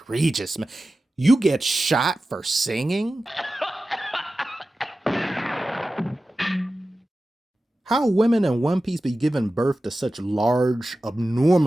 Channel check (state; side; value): normal; both; correlation 0.94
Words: man. You get shot for singing? How women in One Piece be giving birth to such large,